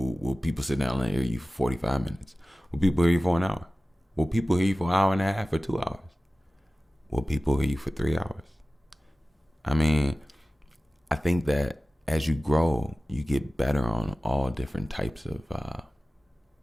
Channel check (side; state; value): both; normal; correlation 0.97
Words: Will people sit down and hear you for 45 minutes? Will people hear you for an hour? Will people hear you for an hour and a half or 2 hours? Will people hear you for 3 hours? I mean, I think that as you grow, you get better on all different types of